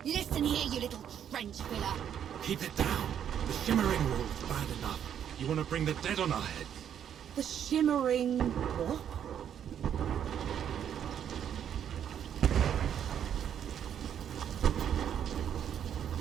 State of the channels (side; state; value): left; quieter; 9.2 dB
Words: Listen here, you little trench filler. Keep it down. The shimmering wall's bad enough. You want to bring the dead on our heads? The shimmering... what?